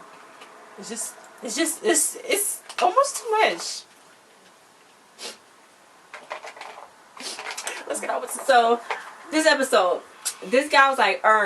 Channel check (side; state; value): both; identical; correlation 1.00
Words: It's almost too much. Let's get on with so. This episode, this guy was like,